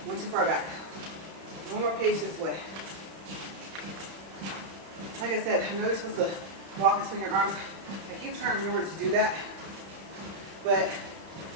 Went too far back. One more page this way. Like I said, I know you're supposed to walk and swing your arms. I keep trying to remember to do that, but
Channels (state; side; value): late; left; 31 ms